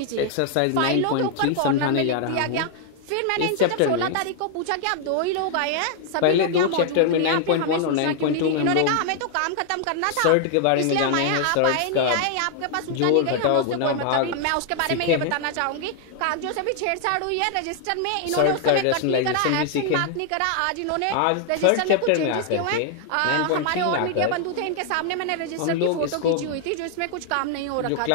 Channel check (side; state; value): both; different; correlation 0.00